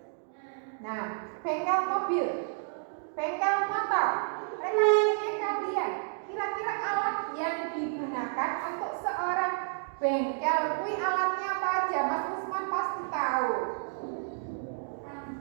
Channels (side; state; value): left; silent; digital silence